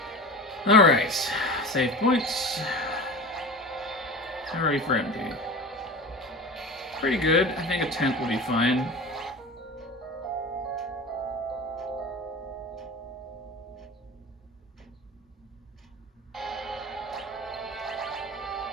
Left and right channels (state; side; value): normal; both; correlation 0.32